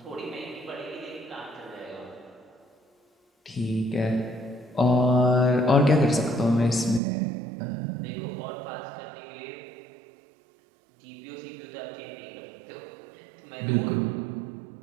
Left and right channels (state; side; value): drops out; left; at 7.0 s